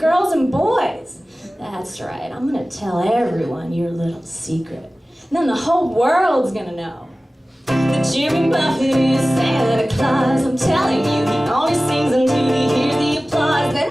and boys? That's right, I'm gonna tell everyone your little secret. And then the whole world's gonna know that Jimmy Buffett is Santa Claus. I'm telling you, he only sings until he hears the applause. Then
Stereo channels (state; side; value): normal; both; correlation 0.97